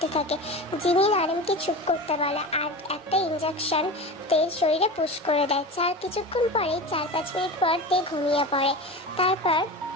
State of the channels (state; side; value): normal; both; correlation 0.29